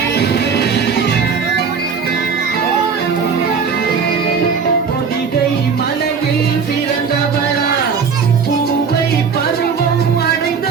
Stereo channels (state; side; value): quieter; left; 5.8 dB